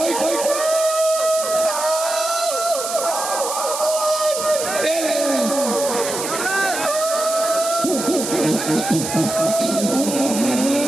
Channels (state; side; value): noise; right; hiss, 5 dB below the sound